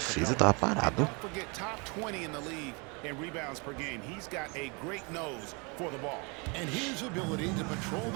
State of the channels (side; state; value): left; quieter; 31.2 dB